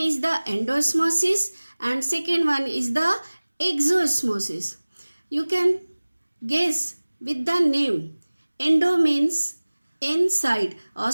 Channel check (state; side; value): inverted; both; correlation -1.00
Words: the endosmosis and second one is the exosmosis. You can guess with the name. Endo means inside.